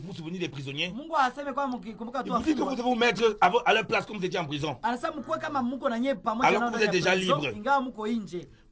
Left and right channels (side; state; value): both; identical; correlation 1.00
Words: souvenir des prisonniers. Mungu aseme kwa mkikumbuka tu Il vous dit que vous wafungwa. devez vous mettre à leur place comme vous étiez en prison. Anasema mkuwe kama mko na nyie pamoja Alors nao. que vous êtes déjà libre. Ingawa mko nje.